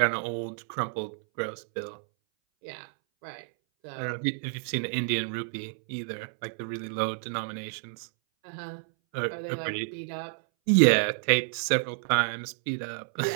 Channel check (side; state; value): left; silent; 58 dB below the other